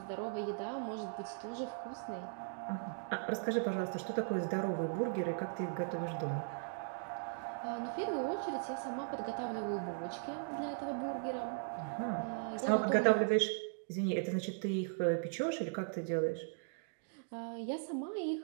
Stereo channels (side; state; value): left; silent; digital silence